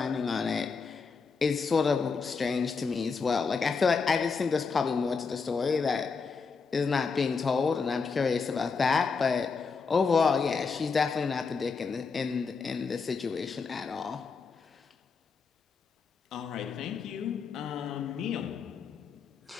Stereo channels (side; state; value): right; quieter; 5.1 dB